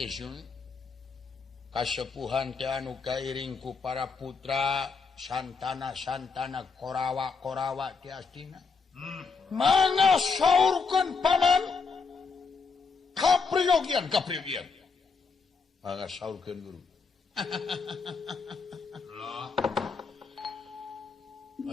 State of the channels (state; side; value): quieter; right; 4.9 dB